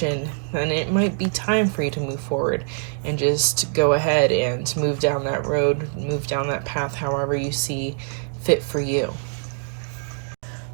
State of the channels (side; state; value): left; silent; 63 dB below the other